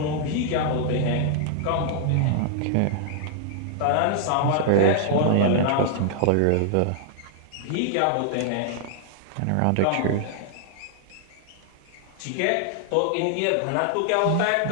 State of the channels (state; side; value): different; both; correlation -0.01